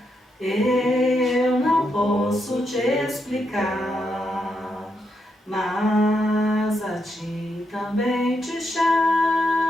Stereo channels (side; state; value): both; normal; correlation 0.81